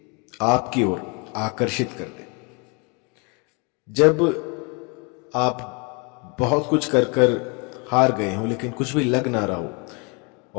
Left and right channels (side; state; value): right; quieter; 32.4 dB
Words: आपकी ओर आकर्षित कर दे। जब आप बहुत कुछ कर कर हार गए हो लेकिन कुछ भी लग ना रहा